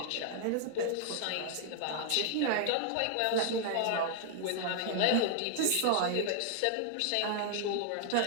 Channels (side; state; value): both; different; correlation 0.00